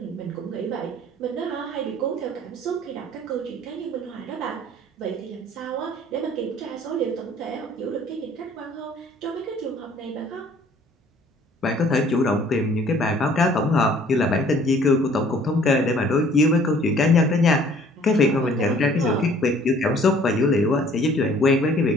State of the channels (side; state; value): both; normal; correlation 0.55